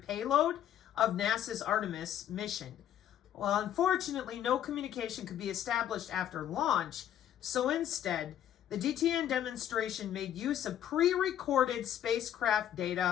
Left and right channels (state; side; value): quieter; right; 10.8 dB